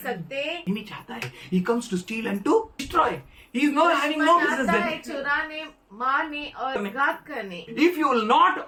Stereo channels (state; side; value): identical; both; correlation 1.00